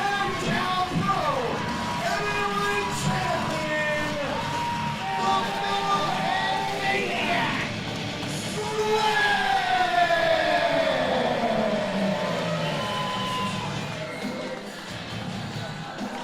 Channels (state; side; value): identical; both; correlation 1.00